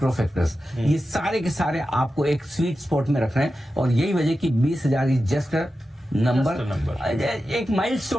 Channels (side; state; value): both; normal; correlation 0.92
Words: फैक्टर्स, ये सारे के सारे आपको एक स्वीट स्पॉट में रख रहे हैं। और यही वजह कि 20,000 इज जस्ट नंबर, एक